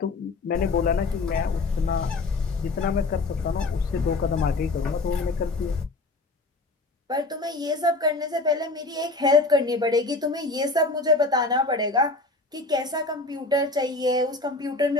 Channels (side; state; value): right; quieter; 3.2 dB